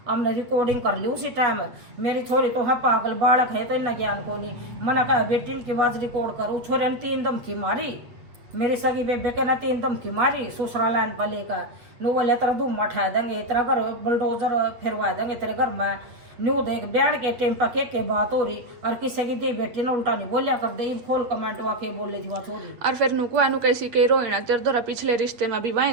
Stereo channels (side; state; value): left; late; 8.0 ms